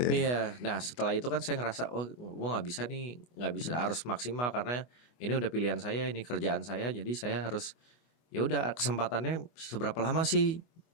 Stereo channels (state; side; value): late; right; 24 ms